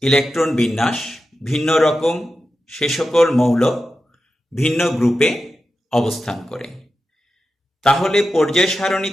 ইলেকট্রন বিন্যাস ভিন্ন রকম সে সকল মৌল ভিন্ন গ্রুপে অবস্থান করে। তাহলে পর্যায়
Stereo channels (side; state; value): both; normal; correlation 0.91